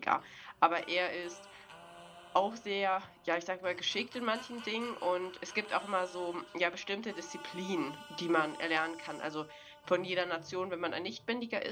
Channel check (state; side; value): identical; both; correlation 1.00